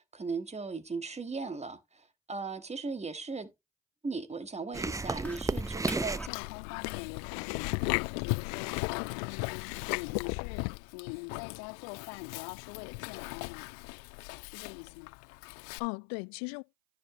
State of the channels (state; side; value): drops out; right; at 6.3 s